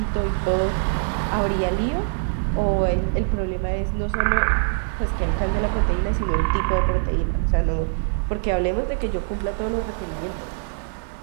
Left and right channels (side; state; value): left; silent; digital silence